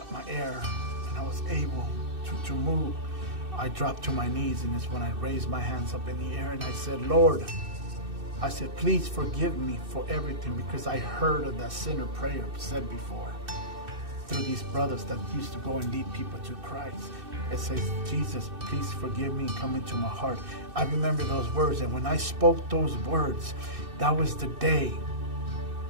my air and I was able to move, I dropped to my knees, and it's when I raised my hands up in the air and I said, Lord, I said, please forgive me for everything, because I heard of that sinner prayer said before through these brothers that used to go and lead people to Christ. It says, Jesus, please forgive me and come into my heart. I remember those words, and when I spoke those words, that was the day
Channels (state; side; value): late; left; 2.6 ms